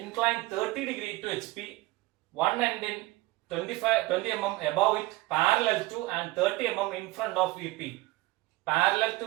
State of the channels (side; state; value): left; quieter; 20.2 dB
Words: 30 degree to H P, one end in 20 mm above it, parallel to and 30 mm in front of VP. Parallel to